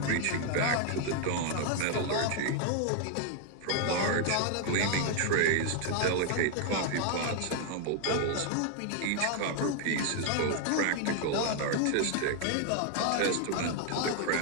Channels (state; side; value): different; both; correlation 0.00